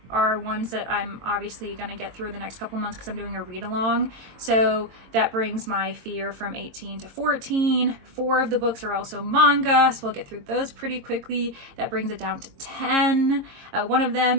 are ones that I'm obviously going to get through the next couple months because I'm doing a read along. So that brings my fear from 18 to 14. 4 of the books are also manga, so we'll get through those pretty quickly. That brings it down to 10. One of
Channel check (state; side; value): late; left; 22 ms